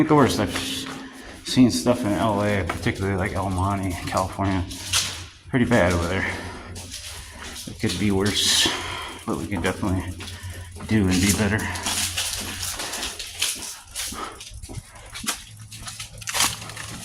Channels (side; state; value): both; identical; correlation 1.00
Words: the worst. I've seen stuff in LA, particularly like El Monte, California. Pretty bad over there. It could be worse, but we can definitely do and be better.